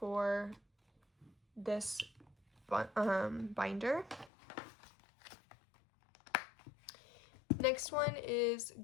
this binder. Next one is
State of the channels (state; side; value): drops out; right; at 4.3 s